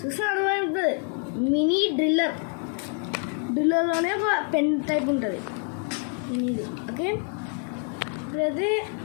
చూస్తే అర్థమవుతుంది. మినీ డ్రిల్లర్లోనే ఒక పెన్ టైప్ ఉంటుంది ఇది. ఓకే, ఇప్పుడైతే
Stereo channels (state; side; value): quieter; right; 38.0 dB